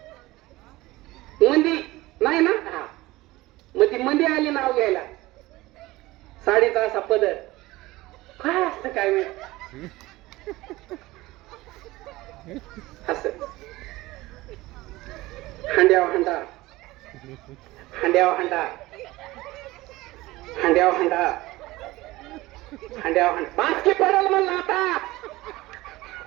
मंदी नाही ना. हा मग ती मंदी आली नाव घ्यायला. साडीचा असा पदर काय असतं काय माहिती असं हांड्याव हांडा हांड्याव हांडा हांड्याव हांडा हांड्याव हांडा बाकी पडल म्हणला. आता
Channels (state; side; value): quieter; left; 19.2 dB